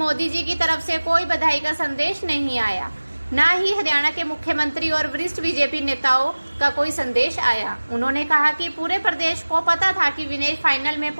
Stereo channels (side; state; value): both; inverted; correlation -1.00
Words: जी की तरफ से कोई बधाई का संदेश नहीं आया, न ही हरियाणा के मुख्यमंत्री और वरिष्ठ बीजेपी नेताओं का कोई संदेश आया। उन्होंने कहा कि पूरे प्रदेश को पता था कि विनेश फाइनल में